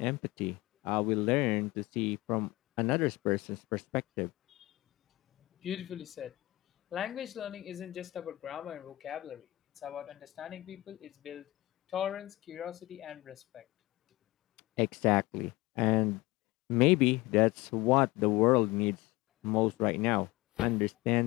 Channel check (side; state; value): right; quieter; 19.7 dB